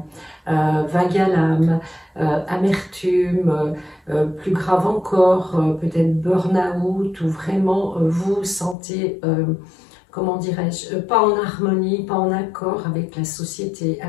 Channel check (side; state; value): right; drops out; at 8.8 s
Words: vague à l'âme, amertume, plus grave encore, peut-être burn-out, ou vraiment vous vous sentez comment dirais-je, pas en harmonie, pas en accord avec la société,